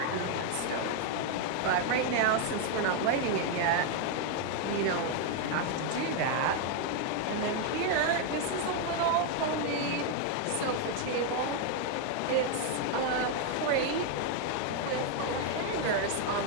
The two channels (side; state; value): both; different; correlation 0.01